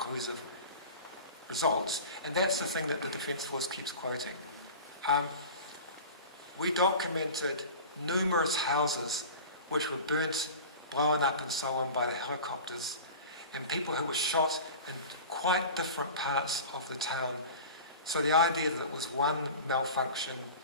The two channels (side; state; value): both; inverted; correlation -0.35